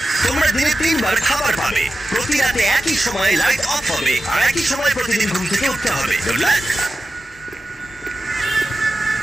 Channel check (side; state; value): both; normal; correlation 0.93